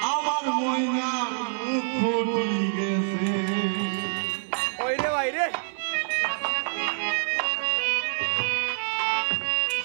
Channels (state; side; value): silent; left; digital silence